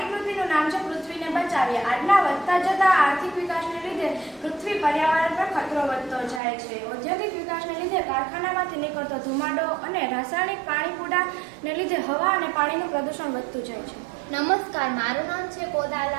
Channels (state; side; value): drops out; left; at 6.4 s